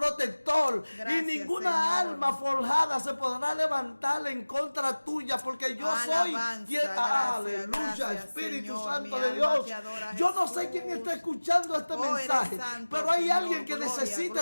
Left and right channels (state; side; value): inverted; both; correlation -1.00